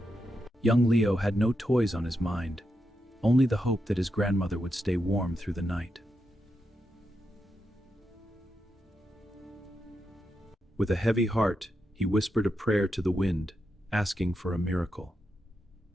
Young Leo had no toys on his mind, only the hope that his grandmother would stay warm through the night. With a heavy heart, he whispered a prayer to the wind, asking for a miracle.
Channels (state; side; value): normal; both; correlation 0.85